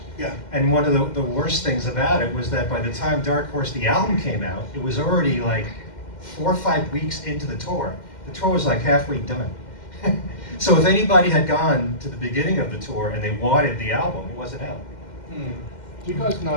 Yeah. And one of the worst things about it was that by the time Dark Horse, the album came out, it was already like 4 or 5 weeks into the tour. The tour was like halfway done. So if anybody had gone to the beginning of the tour and they wanted the album, it wasn't out. Do you guys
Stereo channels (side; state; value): right; late; 2.1 ms